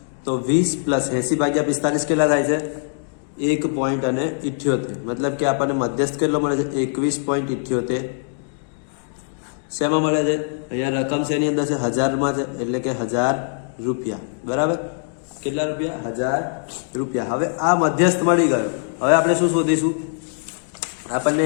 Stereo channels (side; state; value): right; silent; digital silence